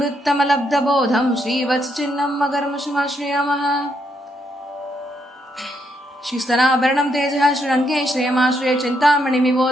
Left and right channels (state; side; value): normal; both; correlation 0.77